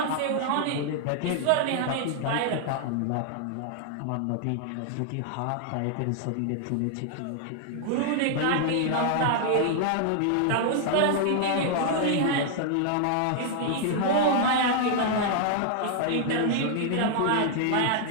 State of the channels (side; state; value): both; different; correlation 0.00